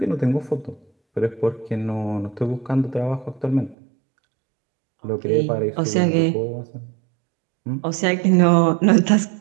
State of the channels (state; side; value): drops out; left; at 3.8 s